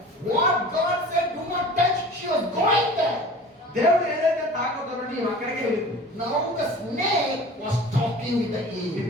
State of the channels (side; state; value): both; normal; correlation 0.41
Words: What God said, do not touch, she was going there. దేవుడు ఏదైతే తాకొద్దనో నీవు అక్కడికే వెళ్ళింది. Now the snake was talking with the Eve.